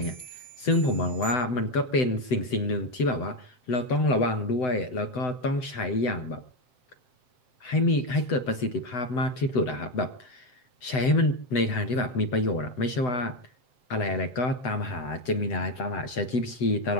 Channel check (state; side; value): late; right; 7.9 ms